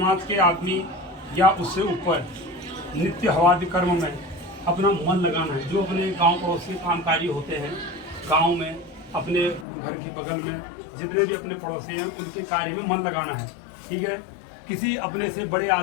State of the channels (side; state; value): right; drops out; at 9.7 s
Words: के आदमी या उससे ऊपर नित्य हवादि कर्म में अपना मन लगाना है। जो अपने गांव पड़ोस के कामकाजी होते हैं, गांव में अपने घर के बगल में जितने भी अपने पड़ोसी हैं उनके कार्य में मन लगाना है, ठीक है। किसी अपने से बड़े